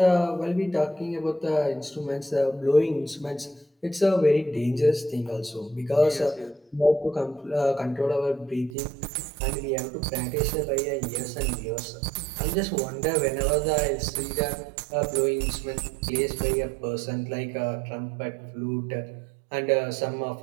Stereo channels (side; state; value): left; drops out; at 8.8 s